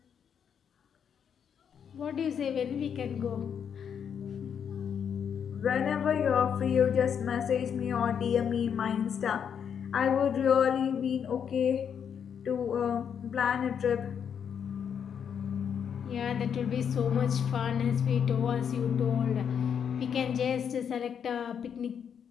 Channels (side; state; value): right; quieter; 7.8 dB